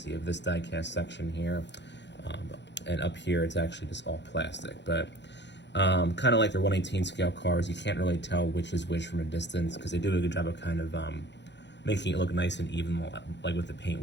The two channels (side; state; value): right; late; 0.51 ms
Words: You have this die-cast section here, and up here it's actually just all plastic. But kind of like their 1/18 scale cars, you can't really tell which is which from a distance because they do a good job of kind of making it look nice and even, like with the paint